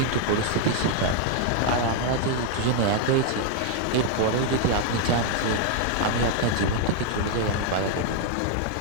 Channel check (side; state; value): both; different; correlation 0.00